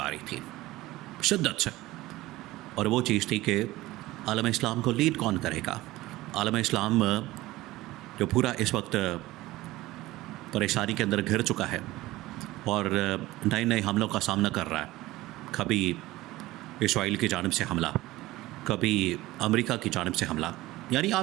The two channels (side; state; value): left; quieter; 17.9 dB